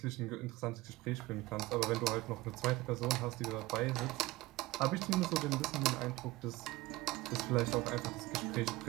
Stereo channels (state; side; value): quieter; left; 19.3 dB